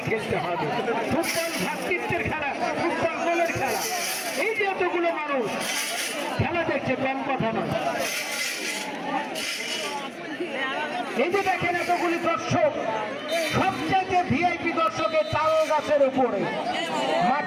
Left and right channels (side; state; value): both; identical; correlation 1.00